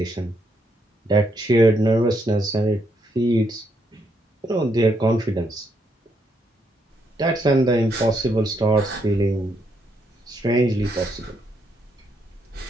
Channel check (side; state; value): both; normal; correlation 0.76